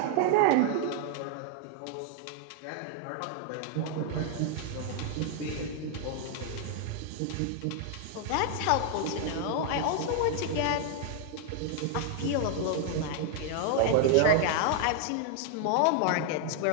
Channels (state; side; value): different; both; correlation 0.00